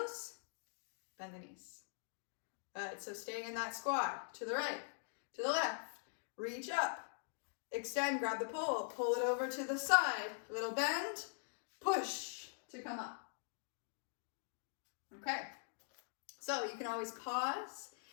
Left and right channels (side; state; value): right; silent; digital silence